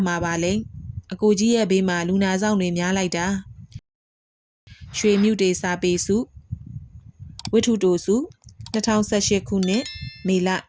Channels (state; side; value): identical; both; correlation 1.00